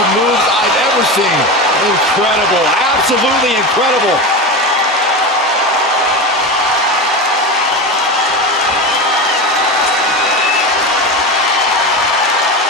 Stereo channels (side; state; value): both; normal; correlation 0.22